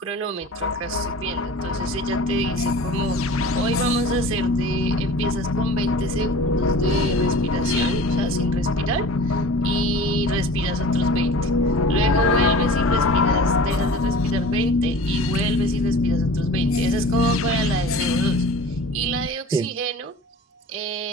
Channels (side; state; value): both; normal; correlation 0.40